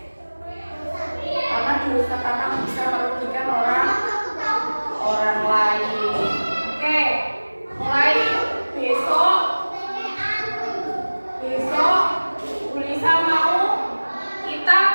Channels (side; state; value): both; inverted; correlation -1.00